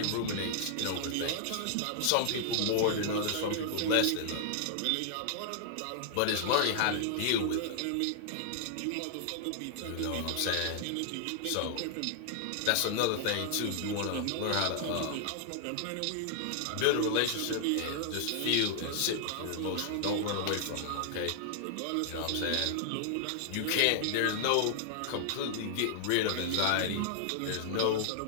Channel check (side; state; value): both; different; correlation -0.01